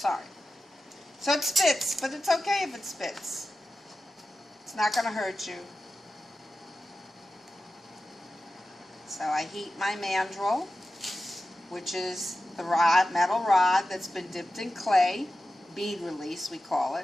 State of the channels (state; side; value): normal; both; correlation 0.93